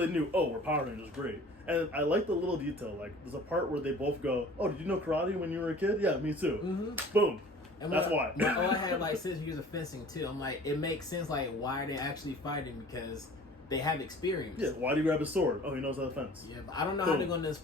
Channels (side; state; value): both; normal; correlation 0.47